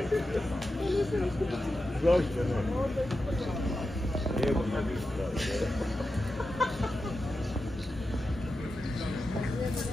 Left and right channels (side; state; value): both; normal; correlation 0.90